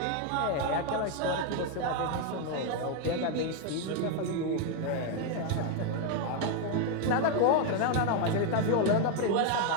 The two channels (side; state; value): both; different; correlation 0.01